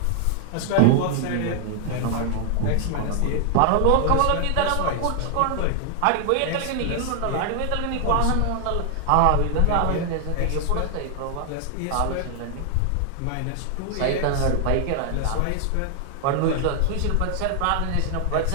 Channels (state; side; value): different; both; correlation 0.00